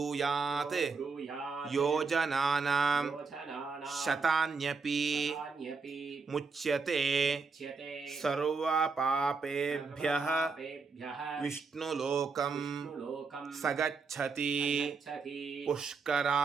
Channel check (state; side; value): quieter; left; 4.7 dB